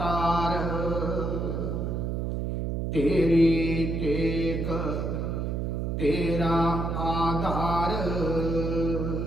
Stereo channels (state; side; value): noise; right; hum, 1 dB below the sound